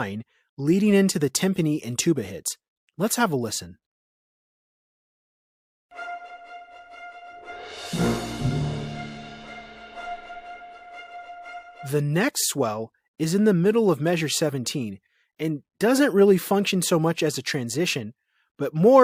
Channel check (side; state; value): both; identical; correlation 1.00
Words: leading into the timpani and tuba hits. Let's have a listen. The next swell is in the middle of measure 17 and doesn't really function so much as a transition, but